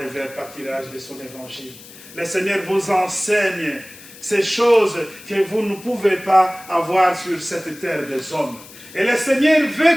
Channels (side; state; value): left; noise; hiss, 19 dB below the sound